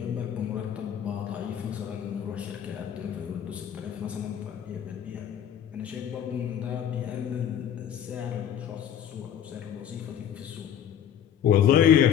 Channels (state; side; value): quieter; right; 9.5 dB